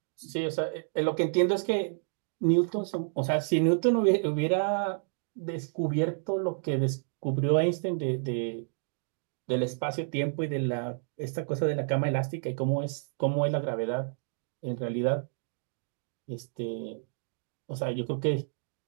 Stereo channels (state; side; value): silent; left; digital silence